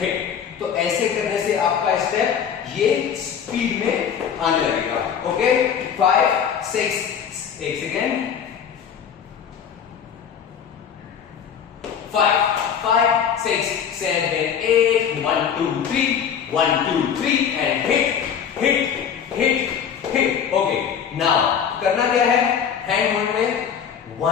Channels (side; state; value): right; quieter; 7.8 dB